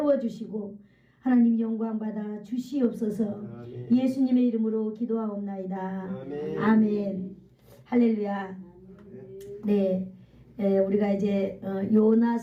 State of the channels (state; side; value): identical; both; correlation 1.00